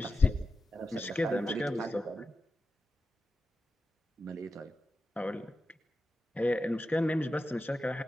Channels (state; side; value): normal; both; correlation 0.90